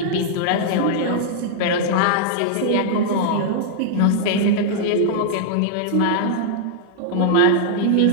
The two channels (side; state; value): both; different; correlation -0.01